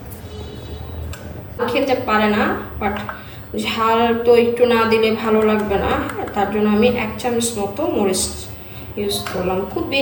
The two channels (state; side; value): identical; both; correlation 1.00